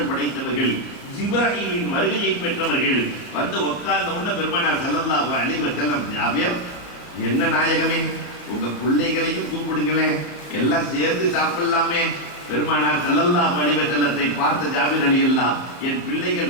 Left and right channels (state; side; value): late; right; 34 ms